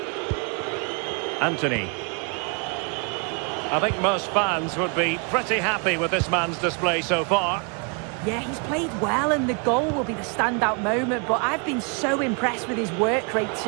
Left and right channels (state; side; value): quieter; left; 35.6 dB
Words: Anthony. I think most fans would be pretty happy with this man's display so far. Yeah, he's played well, and the goal will be the standout moment, but I've been so impressed with his work rate